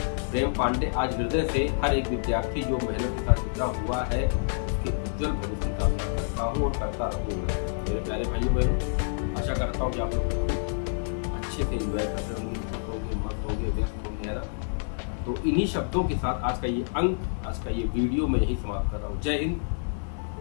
प्रेम पांडे आज हृदय से हर एक विद्यार्थी जो मेहनत के साथ जुड़ा हुआ है उसके उज्जवल भविष्य की कामना करता हूँ और करता रहूँगा। मेरे प्यारे भाइयों बहनों, आशा करता हूँ कि आप लोग अच्छे से एंजॉय कर रहे होंगे, मस्त होंगे, व्यस्त होंगे, है ना। तो इन्हीं शब्दों के साथ आज का ये अंक, आज का ये वीडियो मैं यही समाप्त कर रहा हूँ। जय हिंद,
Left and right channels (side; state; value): right; silent; 59 dB below the other